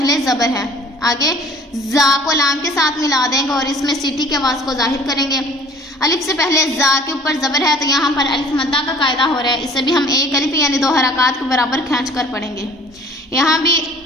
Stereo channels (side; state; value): both; normal; correlation 0.51